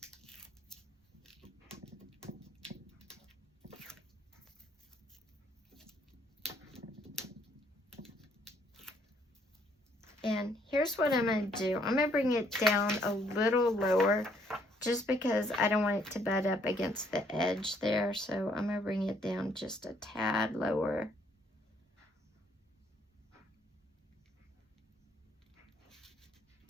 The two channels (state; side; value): normal; both; correlation 0.67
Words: And here's what I'm going to do. I'm going to bring it down a little lower just because I don't want it to butt up against the edge there. So I'm going to bring it down just a tad lower.